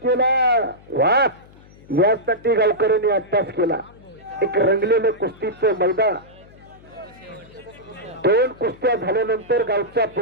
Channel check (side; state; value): left; noise; hum, 24 dB below the sound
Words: केला वा यासाठी गावकऱ्यांनी अभ्यास केला एक रंगलेलं कुस्तीचं मैदान दोन कुस्त्या झाल्यानंतर गावचा